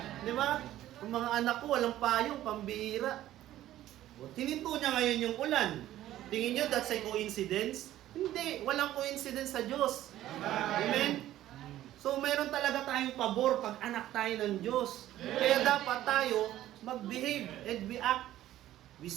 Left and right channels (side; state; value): left; quieter; 13.6 dB